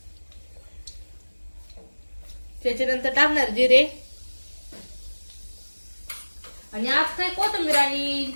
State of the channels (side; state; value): both; inverted; correlation -1.00